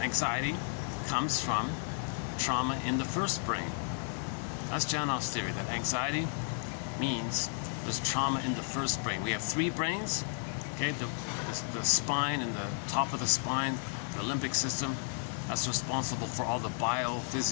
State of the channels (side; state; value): right; silent; 56 dB below the other